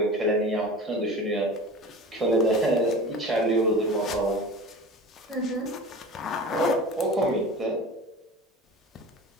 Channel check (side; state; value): both; normal; correlation 0.36